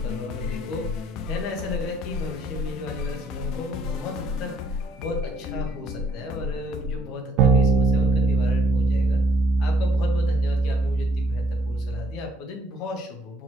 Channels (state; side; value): normal; both; correlation 0.66